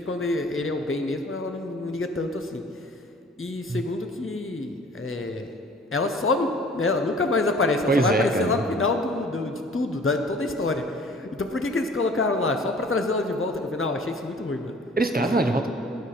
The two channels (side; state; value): both; normal; correlation 0.50